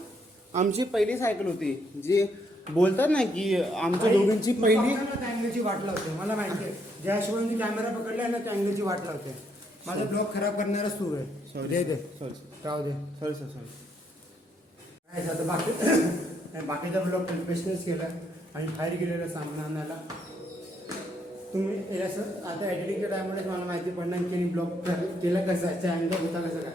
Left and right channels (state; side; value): normal; both; correlation 0.73